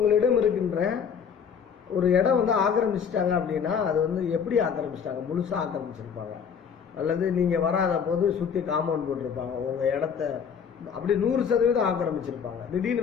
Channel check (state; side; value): quieter; right; 7.0 dB